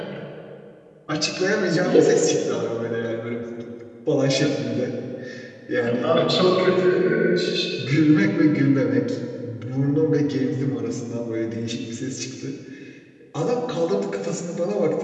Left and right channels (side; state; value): both; identical; correlation 1.00